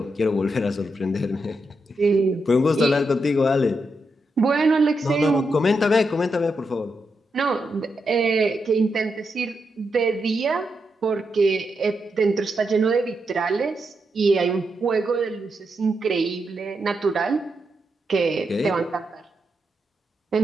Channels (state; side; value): normal; both; correlation 0.84